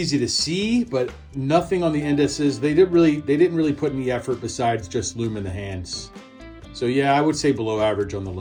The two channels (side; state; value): both; identical; correlation 1.00